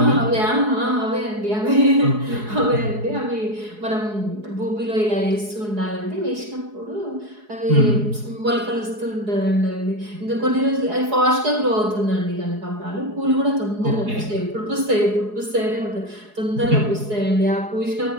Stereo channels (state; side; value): late; left; 4.8 ms